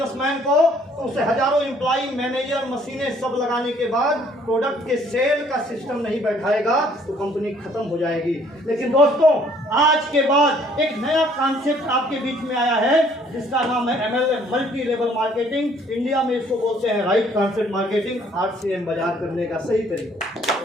को तो उसे हजारों एम्प्लॉय, मैनेजर, मशीनें सब लगाने के बाद प्रोडक्ट के सेल का सिस्टम नहीं बैठाएगा तो कंपनी खत्म हो जाएगी। लेकिन दोस्तों आज के बाद एक नया कॉन्सेप्ट आपके बीच में आया है जिसका नाम है MLM, multi level marketing. India में इसको बोलते हैं राइट कॉन्सेप्ट मार्केटिंग, RCM बाजार करने का सही तरीका।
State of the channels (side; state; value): both; normal; correlation 0.61